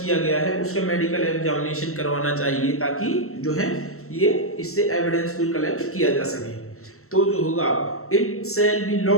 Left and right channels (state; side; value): late; right; 0.63 ms